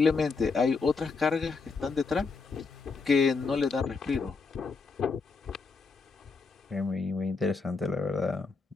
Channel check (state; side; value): quieter; right; 4.4 dB